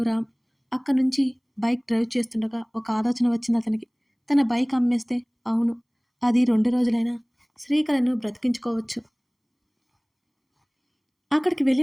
రామ్. అక్కడి నుంచి బైక్ డ్రైవ్ చేస్తుండగా ఒక ఆలోచన వచ్చింది అతనికి. తన బైక్ అమ్మేస్తే, అవును, అది 2 రోజులైనా శ్రీకళను బ్రతికించుకోవచ్చు. అక్కడికి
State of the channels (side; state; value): both; identical; correlation 1.00